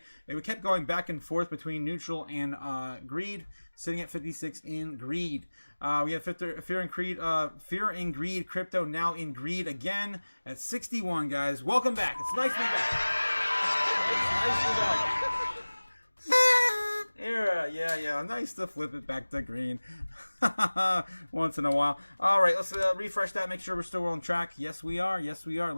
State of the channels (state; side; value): inverted; both; correlation -1.00